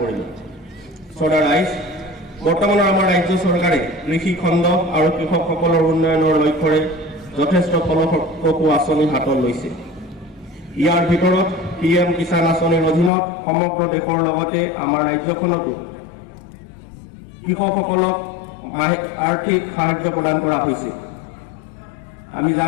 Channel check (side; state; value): right; drops out; at 13.1 s